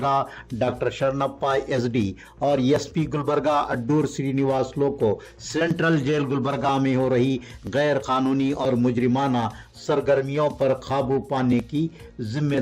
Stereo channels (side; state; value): both; identical; correlation 1.00